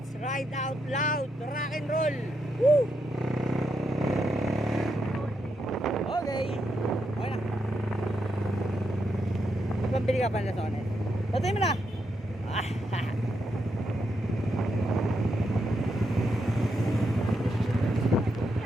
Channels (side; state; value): both; normal; correlation 0.81